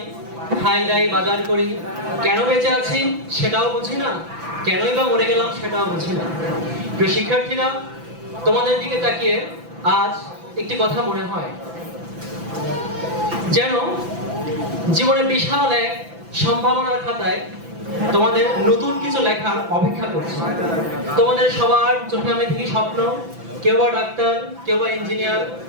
খাই দাই, বাজার করি, কেন বেঁচে আছি সেটাও বুঝি না, কেনই বা মরে গেলাম সেটাও বুঝি না। প্রিয় শিক্ষার্থীরা, তোমাদের দিকে তাকিয়ে আজ একটি কথা মনে হয়, যেন জীবনে বিশাল এক সম্ভাবনার খাতায় তোমাদের নতুন কিছু লেখার অপেক্ষা করছে। তোমাদের সবার চোখে আমি দেখি স্বপ্ন, কেউ বা ডাক্তার, কেউ বা ইঞ্জিনিয়ার,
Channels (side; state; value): left; late; 6.0 ms